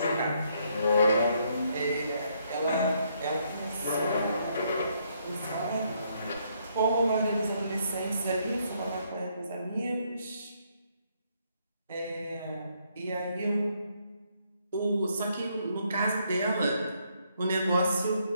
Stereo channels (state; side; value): inverted; both; correlation -0.72